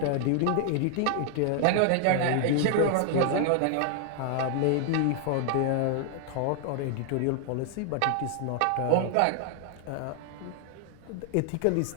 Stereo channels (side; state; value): both; different; correlation 0.00